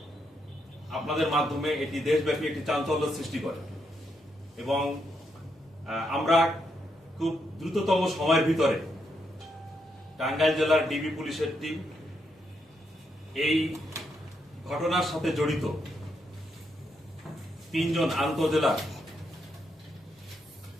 আপনাদের মাধ্যমে এটি দেশব্যাপী একটি চাঞ্চল্য সৃষ্টি করে এবং আমরা খুব দ্রুততম সময়ের ভিতরে টাঙ্গাইল জেলার ডিবি পুলিশের টিম এই ঘটনার সাথে জড়িত 3 জন আন্তজেলা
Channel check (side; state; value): both; normal; correlation 0.79